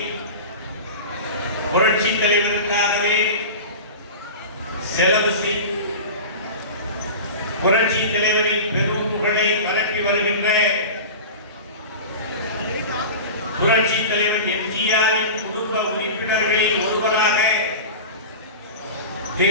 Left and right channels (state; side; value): inverted; both; correlation -0.31